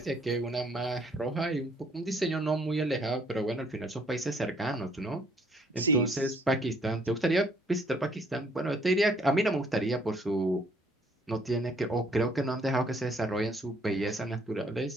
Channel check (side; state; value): both; normal; correlation 0.64